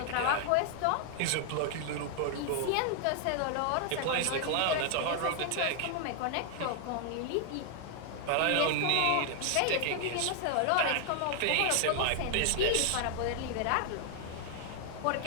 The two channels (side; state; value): both; different; correlation 0.00